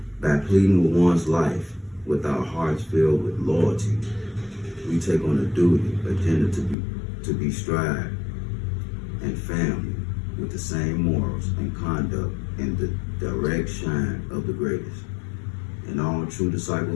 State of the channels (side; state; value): right; drops out; at 6.8 s